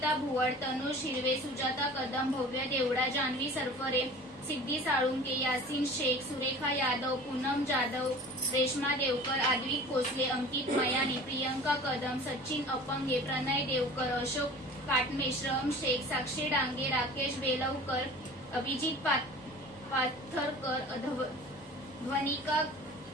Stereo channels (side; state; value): both; normal; correlation 0.42